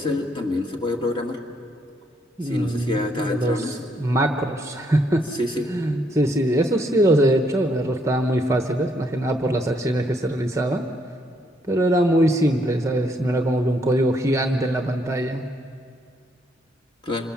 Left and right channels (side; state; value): both; normal; correlation 0.72